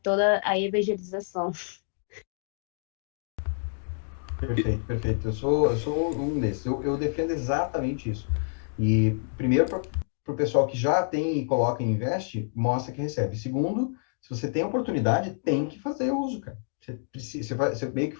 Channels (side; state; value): right; silent; digital silence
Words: toda a evangelização. Perfeito, perfeito. Eu sou um desses. Eu defendo exatamente isso. E, primeiro, para o pessoal que já tem e coloca e investe, mostra que recebe. Segundo, se você tem oportunidade, tem que fazer uso, cara. Você, precisa, você meio que